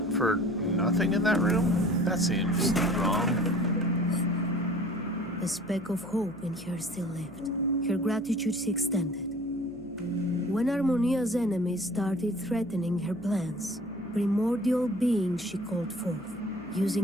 for nothing in that room? That seems wrong. A speck of hope in her still lived. Her gratitude she extended. When Harmonia's enemies started threatening her plans, primordial beings she called forth,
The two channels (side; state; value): left; noise; hum, 21 dB below the sound